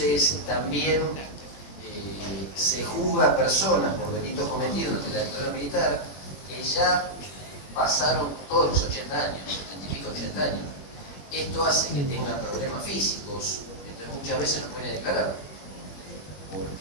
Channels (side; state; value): right; late; 21 ms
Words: también se juzga a personas por delitos cometidos ante la dictadura militar que ya pasaron todos los 80 años, 80 años. Esto hace que tengan problemas físicos, entonces muchas veces no pueden declarar,